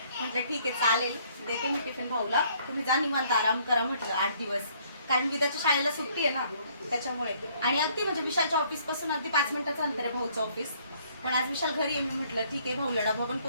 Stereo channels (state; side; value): inverted; both; correlation -0.63